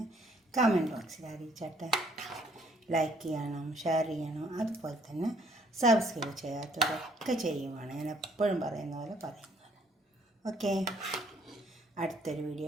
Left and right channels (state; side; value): normal; both; correlation 0.63